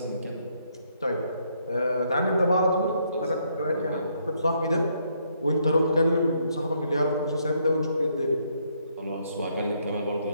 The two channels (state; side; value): inverted; both; correlation -0.72